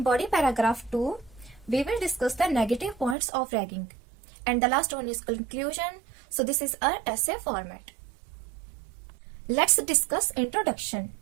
body paragraph 2, we will discuss the negative points of ragging. And the last one is conclusion. So this is our essay format. Let's discuss introduction.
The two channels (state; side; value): drops out; left; at 3.2 s